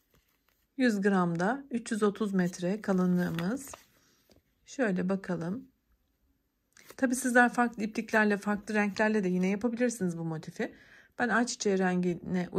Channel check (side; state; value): both; identical; correlation 1.00